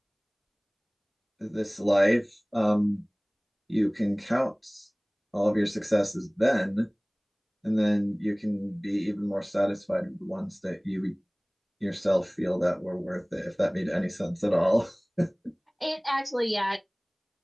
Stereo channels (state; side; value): identical; both; correlation 1.00